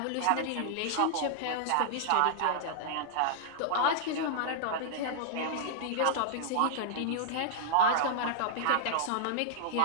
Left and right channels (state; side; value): different; both; correlation -0.01